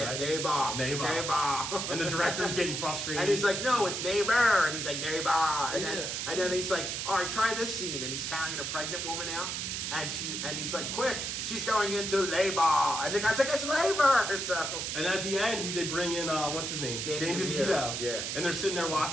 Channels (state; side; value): noise; right; hiss, 3 dB below the sound